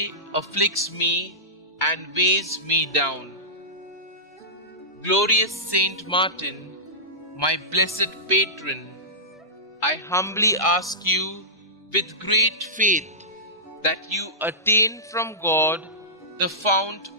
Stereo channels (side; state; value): both; normal; correlation -0.17